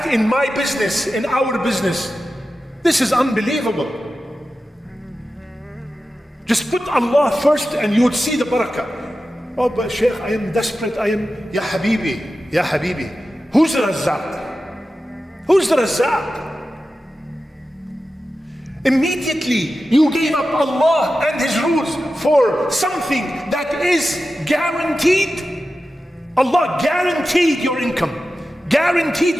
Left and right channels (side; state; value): both; normal; correlation 0.93